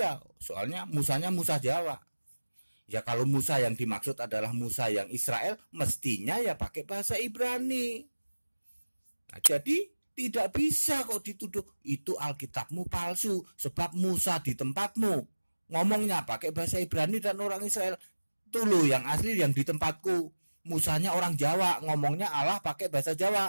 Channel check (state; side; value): inverted; both; correlation -1.00